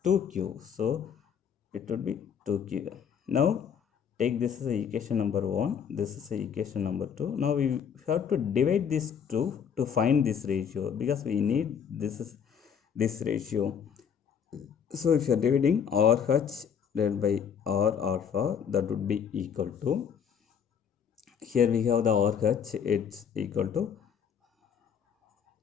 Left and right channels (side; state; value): right; quieter; 7.6 dB